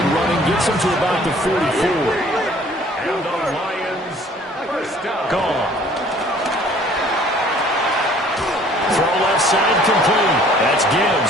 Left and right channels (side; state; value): both; normal; correlation 0.55